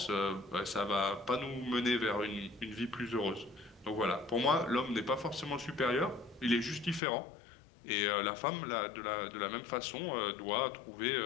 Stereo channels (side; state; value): right; drops out; at 7.0 s